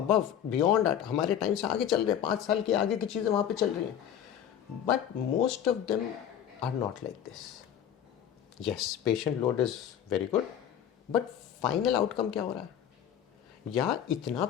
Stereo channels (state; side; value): quieter; right; 9.7 dB